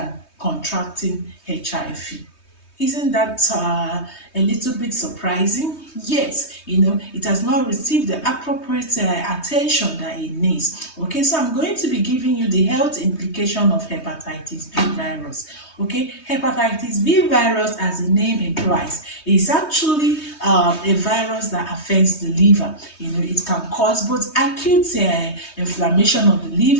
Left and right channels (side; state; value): right; late; 3.2 ms